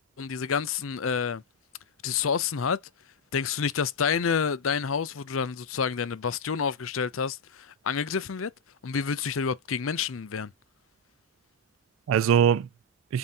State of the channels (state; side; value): normal; both; correlation 0.00